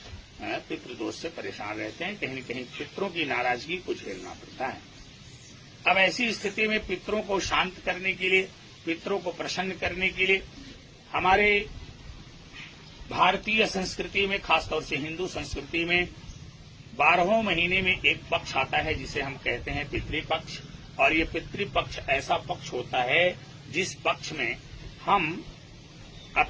पितृदोष से परेशान रहते हैं, कहीं न कहीं पितरों की नाराजगी को झेलना पड़ता है। अब ऐसी स्थिति में पितरों को शांत करने के लिए, पितरों को प्रसन्न करने के लिए हमारे भारतीय संस्कृति में, खासतौर से हिंदू संस्कृति में 12वें महीने में एक पक्ष आता है जिसे हम कहते हैं पितृपक्ष। और ये पितृपक्ष ऐसा पक्ष होता है जिस पक्ष में हम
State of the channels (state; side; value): identical; both; correlation 1.00